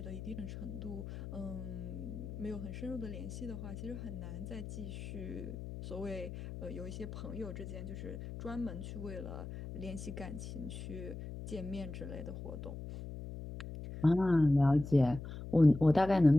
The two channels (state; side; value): noise; left; hum, 9 dB below the sound